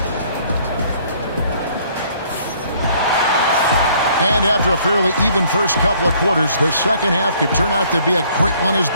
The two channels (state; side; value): inverted; both; correlation -0.61